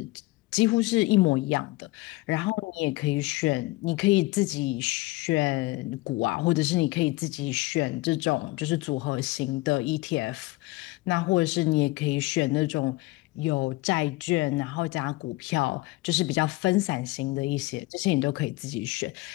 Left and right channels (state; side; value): quieter; right; 20.7 dB